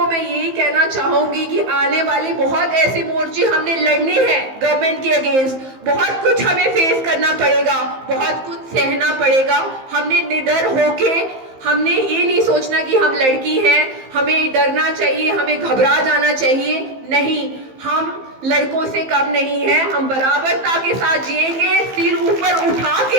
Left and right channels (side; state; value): left; late; 15 ms